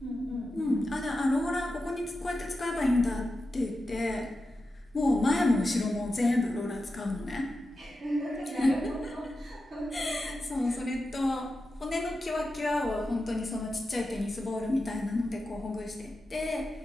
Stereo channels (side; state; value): both; normal; correlation 0.91